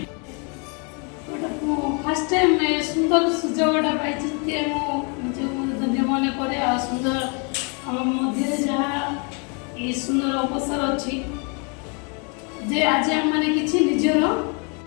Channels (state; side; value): quieter; right; 35.4 dB